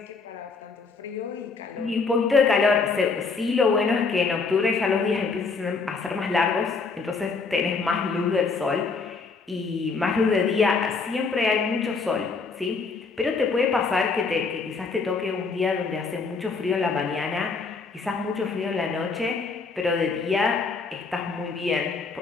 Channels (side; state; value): right; quieter; 4.5 dB